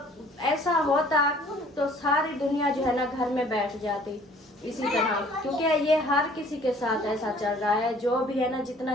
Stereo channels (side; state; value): both; normal; correlation 0.55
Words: ऐसा होता तो सारी दुनिया जो है ना घर में बैठ जाती इसी तरह, क्योंकि ये हर किसी के साथ ऐसा चल रहा है। जो भी है ना, जितना